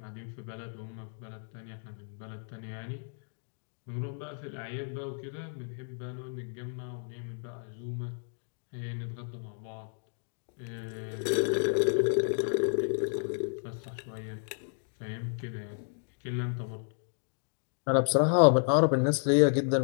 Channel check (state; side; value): silent; right; 56 dB below the other